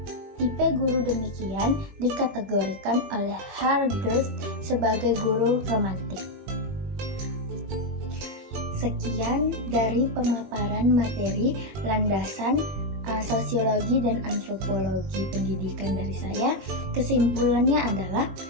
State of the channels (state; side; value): late; left; 21 ms